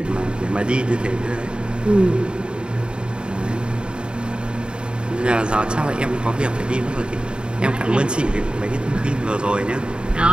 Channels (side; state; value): left; late; 0.051 ms